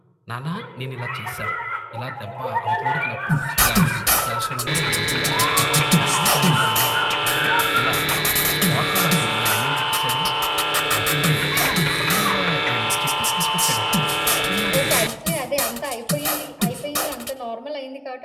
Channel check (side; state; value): both; identical; correlation 1.00